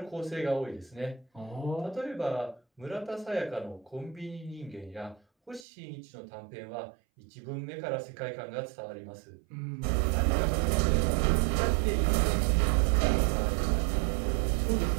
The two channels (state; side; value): drops out; left; at 5.7 s